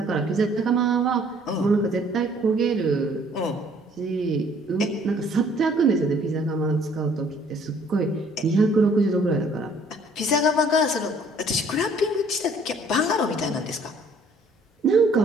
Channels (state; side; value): normal; both; correlation 0.58